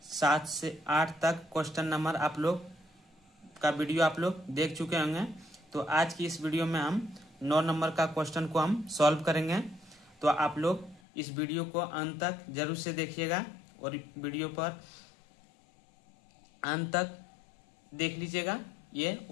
7 से 8 तक क्वेश्चन नंबर आप लोग का वीडियो आप लोग देख चुके होंगे। तो आज की इस वीडियो में हम 9 नंबर का क्वेश्चन को हम सॉल्व करेंगे। तो आप लोग इस वीडियो को अंत तक जरूर से देखिएगा और वीडियो पर अंत तक देख लीजिएगा ये।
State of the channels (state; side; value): drops out; right; at 11.0 s